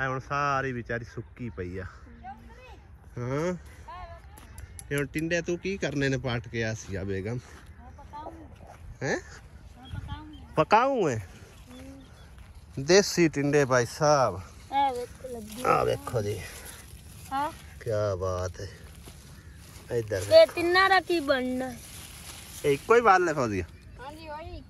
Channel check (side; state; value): both; identical; correlation 1.00